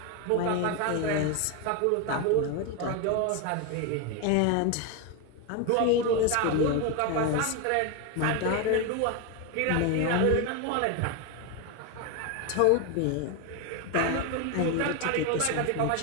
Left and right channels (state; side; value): different; both; correlation 0.02